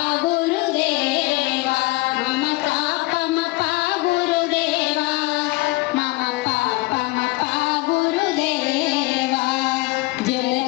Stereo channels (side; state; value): right; quieter; 21.4 dB